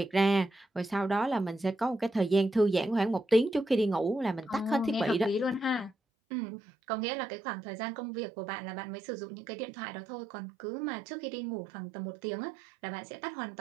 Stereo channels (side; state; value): left; drops out; at 5.9 s